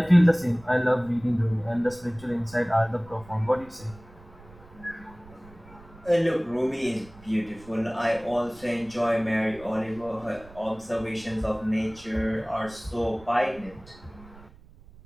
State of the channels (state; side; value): noise; right; rumble, 22 dB below the sound